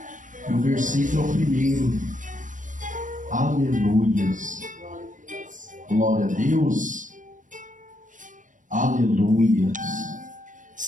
o versículo é o primeiro. Aleluias. Glória a Deus. Aleluias.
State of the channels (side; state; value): left; late; 0.37 ms